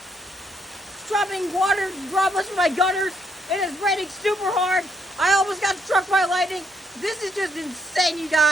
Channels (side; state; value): both; normal; correlation 0.72